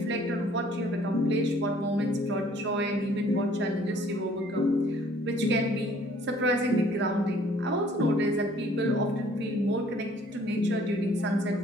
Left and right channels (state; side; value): normal; both; correlation 0.57